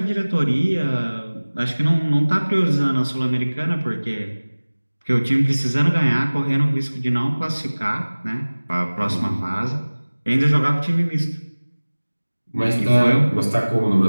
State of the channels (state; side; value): inverted; both; correlation -1.00